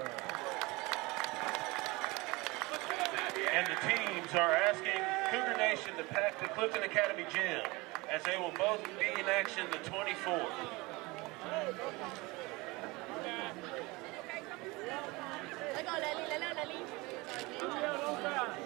And the teams are asking Cougar Nation to pack the Clifton Academy gym, as they will both be in action the 24th.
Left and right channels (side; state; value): left; quieter; 23.6 dB